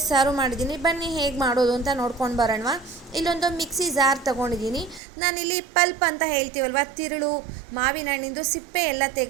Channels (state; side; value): drops out; left; at 5.0 s